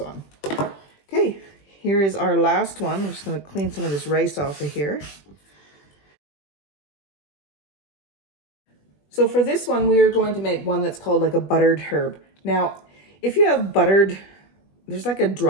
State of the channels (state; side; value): late; right; 21 ms